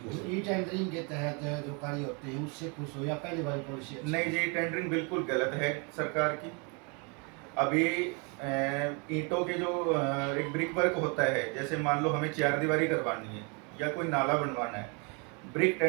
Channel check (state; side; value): quieter; left; 33.4 dB